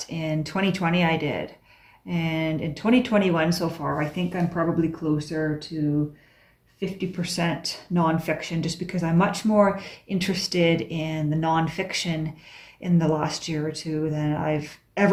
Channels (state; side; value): identical; both; correlation 1.00